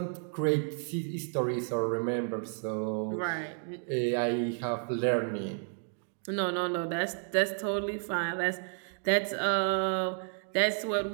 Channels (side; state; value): left; silent; 57 dB below the other